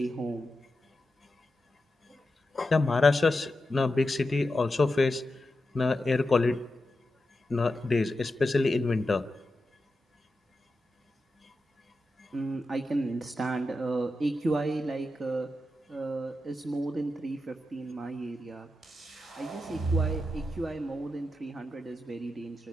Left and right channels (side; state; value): both; normal; correlation 0.90